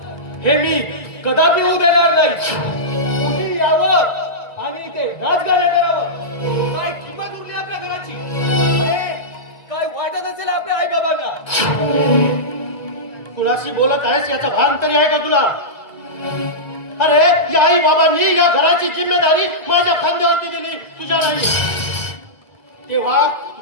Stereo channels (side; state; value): right; late; 2.0 ms